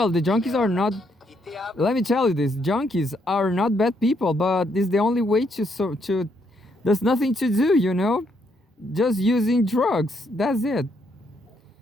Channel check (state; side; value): normal; both; correlation 0.74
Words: the junkies are not, let me tell you this, junkies are not bad people, but it's the only way to there's nothing to do, just using drugs. That's it.